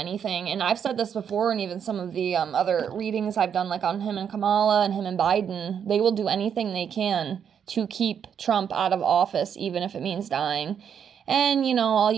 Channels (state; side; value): quieter; left; 7.9 dB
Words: And I've said this before, and even some of the other readings I've done, like on him and Kamala and him and Biden, they will do anything they can to keep Trump out of office, even if it means dying. And, all